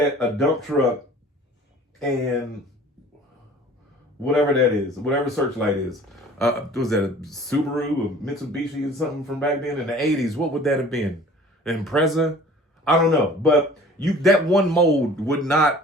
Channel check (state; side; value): normal; both; correlation 0.47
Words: a dump truck, and whatever that is, whatever Searchlight is. Was that a Subaru, a Mitsubishi, or something from back then in the 80s? What would that have been? An Impreza? I don't know. But that one mold would not